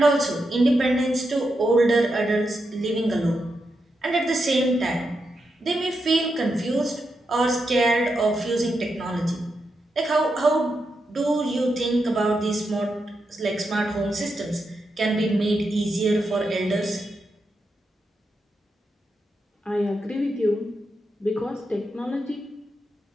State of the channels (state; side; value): normal; both; correlation 0.85